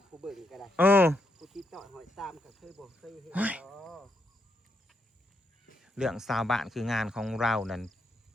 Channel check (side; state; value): both; normal; correlation 0.79